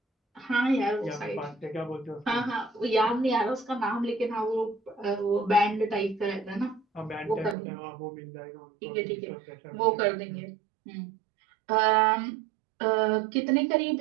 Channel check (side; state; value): left; drops out; at 7.6 s